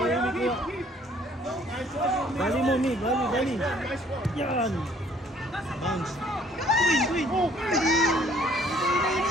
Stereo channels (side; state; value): both; normal; correlation 0.60